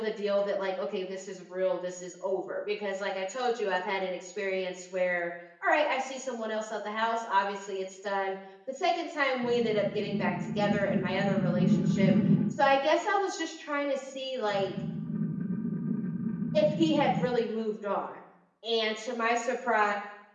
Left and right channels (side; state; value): both; identical; correlation 1.00